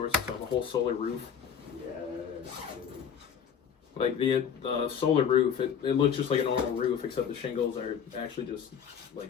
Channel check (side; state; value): right; quieter; 7.7 dB